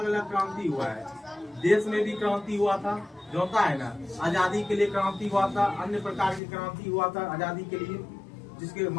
अलग क्रांति हुआ है। देश में भी क्रांति हुआ था, जो होता है ना, आजादी के लिए क्रांति हुआ था। अन्य प्रकार की क्रांति हुआ था आजादी के लिए, जिसके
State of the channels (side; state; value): right; drops out; at 6.4 s